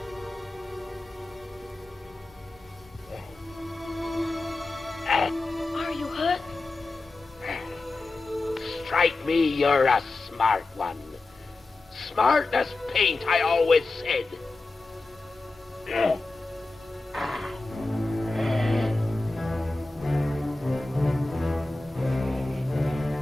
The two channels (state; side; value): quieter; right; 3.1 dB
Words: Are you hurt? Strike me, you're a smart one. Smart as paint, I always said.